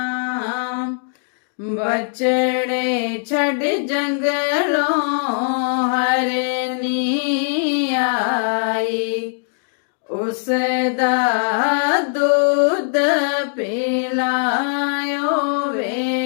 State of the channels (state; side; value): silent; right; digital silence